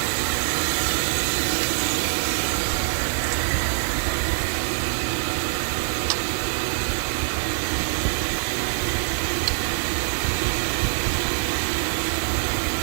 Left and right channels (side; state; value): left; silent; digital silence